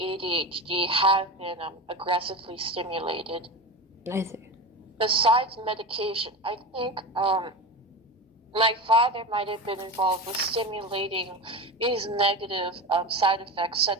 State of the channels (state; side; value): normal; both; correlation 0.24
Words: have been aggressively stimulated. I see. Besides medication, I think my father might have been involved with stimulating these negative side effects,